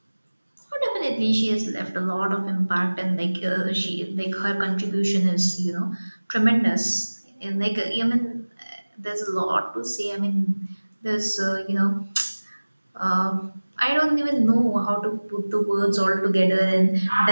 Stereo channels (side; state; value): both; inverted; correlation -1.00